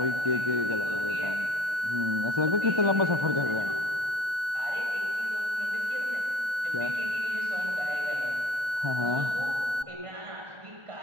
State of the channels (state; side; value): late; left; 1.3 ms